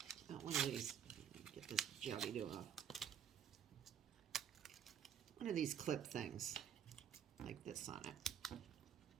not one of these. Get this jobby-do off. One of these clip things, like this on it.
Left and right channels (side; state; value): left; quieter; 8.5 dB